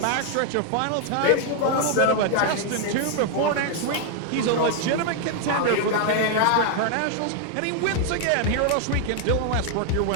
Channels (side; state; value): both; different; correlation 0.00